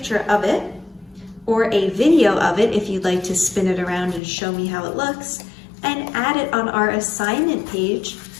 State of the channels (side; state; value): right; drops out; at 4.2 s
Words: of it or a video of it if you'd like to spin it around and show me how it looks, and add it on our assignment page